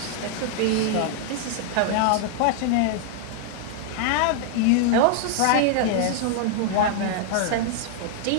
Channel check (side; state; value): both; different; correlation 0.00